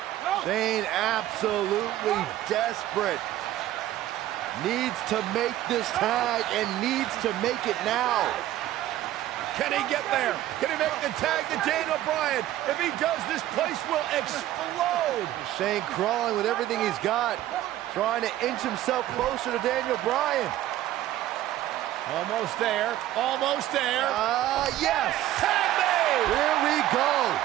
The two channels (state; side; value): quieter; left; 13.9 dB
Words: Shane absolutely desperate. Needs to make this tag and needs to make it now. Can he get there? Can he make the tag to Daniel Bryan? If he does, this place will explode. Shane crawling with everything he's got, trying to inch himself closer to Daniel Bryan. Almost there. Almost there. Yes. Tag made. Here we go.